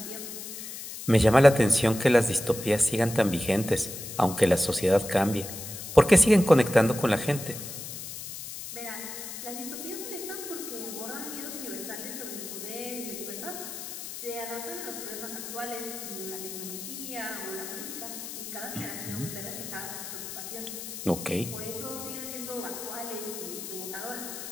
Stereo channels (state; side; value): noise; left; hiss, 9 dB below the sound